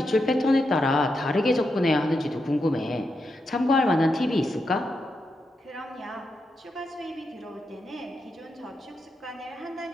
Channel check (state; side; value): normal; both; correlation 0.85